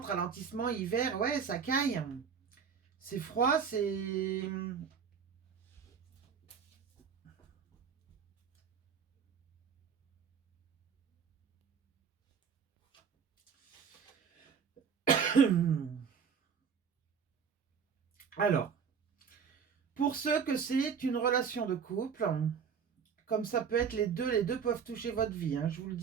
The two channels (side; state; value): left; quieter; 6.7 dB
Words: ralentissement, hiver, ouais, ça caille. C'est froid, c'est... Alors, pour ceux que c'est une relation de couple, comme ça peut être les deux peuvent toucher votre vie, hein, je vous le